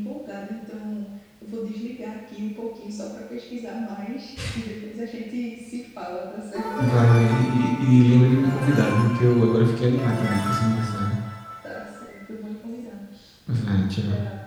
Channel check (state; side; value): identical; both; correlation 1.00